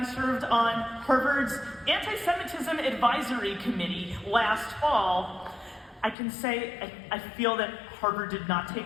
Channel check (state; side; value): drops out; right; at 6.2 s